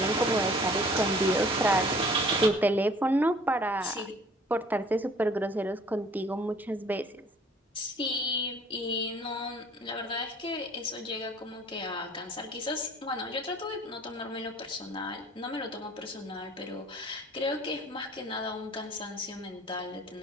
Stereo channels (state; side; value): normal; both; correlation 0.52